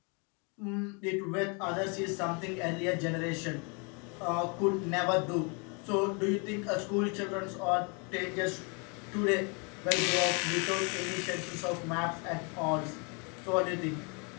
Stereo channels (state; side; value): quieter; right; 33.9 dB